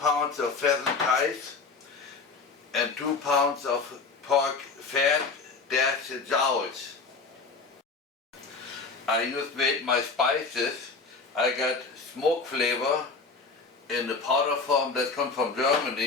of pheasant thighs and 2 pounds of pork fat dash jowls. I just made my spices. I got smoke flavor in the powder form that comes from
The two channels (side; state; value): right; quieter; 4.4 dB